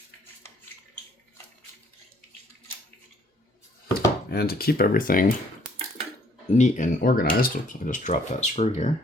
And to keep everything neat and organized, oops, I just dropped that screw here.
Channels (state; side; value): normal; both; correlation 0.62